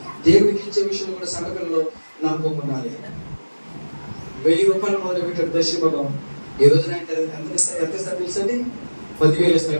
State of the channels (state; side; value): inverted; both; correlation -1.00